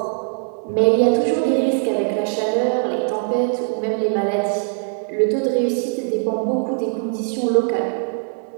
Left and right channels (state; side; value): silent; left; 65 dB below the other